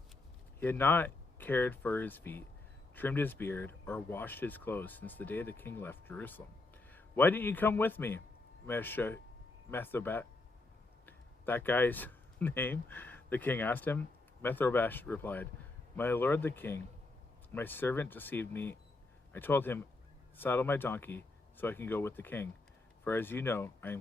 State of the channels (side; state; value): right; quieter; 3.2 dB